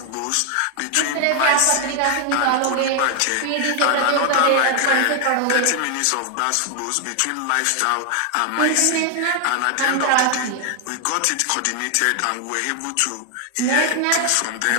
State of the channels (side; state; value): both; different; correlation 0.00